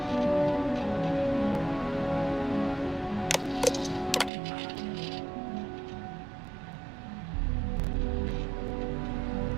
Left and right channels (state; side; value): drops out; left; at 4.3 s